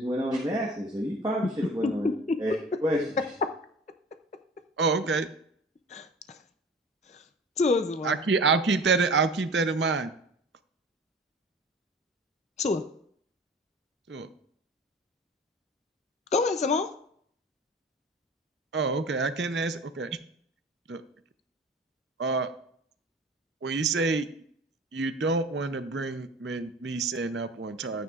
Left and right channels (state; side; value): normal; both; correlation 0.41